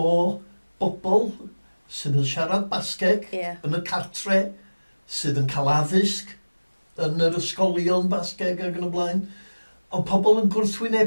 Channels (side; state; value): both; inverted; correlation -1.00